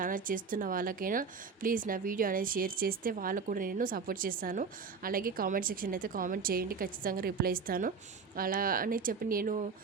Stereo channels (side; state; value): left; quieter; 5.3 dB